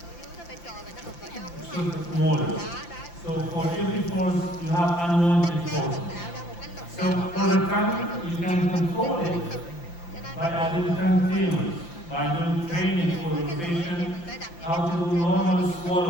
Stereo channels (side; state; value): right; late; 5.8 ms